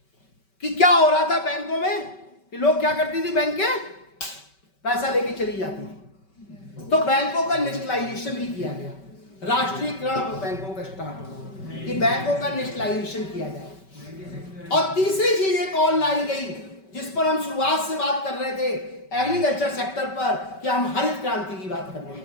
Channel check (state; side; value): late; right; 5.2 ms